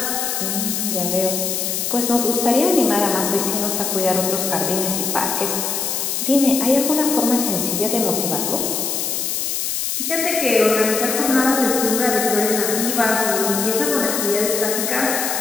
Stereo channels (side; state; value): left; noise; hiss, 1 dB below the sound